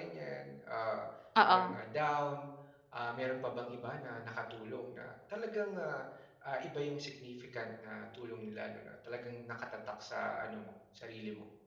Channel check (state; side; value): identical; both; correlation 1.00